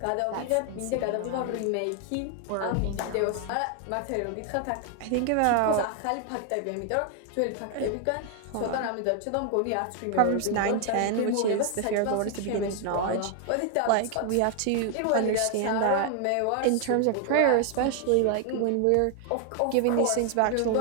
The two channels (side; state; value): both; different; correlation 0.00